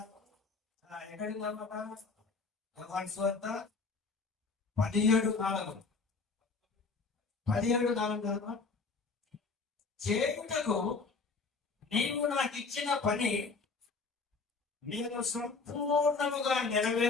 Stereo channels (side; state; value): right; quieter; 4.3 dB